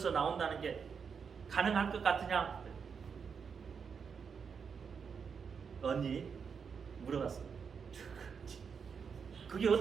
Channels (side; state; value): left; quieter; 6.3 dB